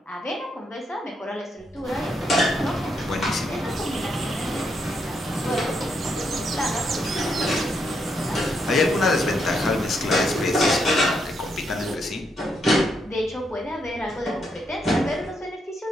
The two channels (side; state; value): both; normal; correlation 0.78